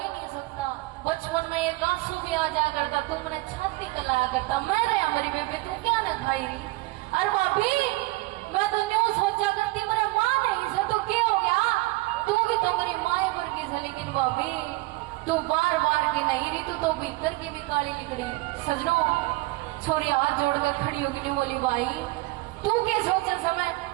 नहीं सकता, बचपन में एक आंसू भी आ जाया करता, तुमने छाती कलाया करता, मैं रहा मेरी बेबे तू क्या न खाई रही, अरे भाभी मैं तो न्यू सोचा करती मेरे माँ नहीं से तो क्या हो गया, तू भी तो मेरी माँ वर्गी से, लेकिन भाभी तू बार बार की नहीं रही, तू तो भीतर की भी काली निकली। सजनों छोरी हाथ जोड़ कर खड़ी होगी नहीं बोली भाई तू क्या सोचा समय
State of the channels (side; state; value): left; quieter; 21.6 dB